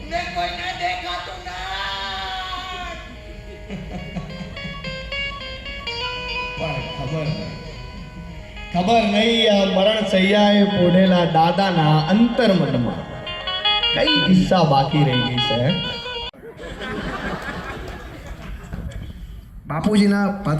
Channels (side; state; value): both; identical; correlation 1.00